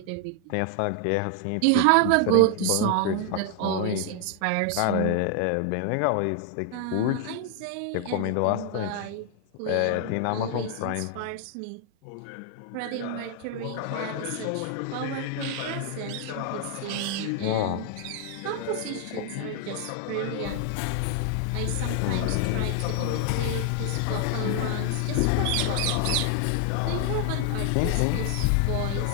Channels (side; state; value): both; different; correlation 0.00